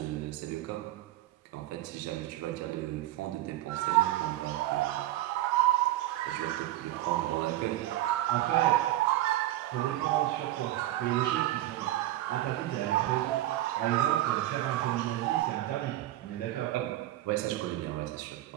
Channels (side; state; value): left; quieter; 15.0 dB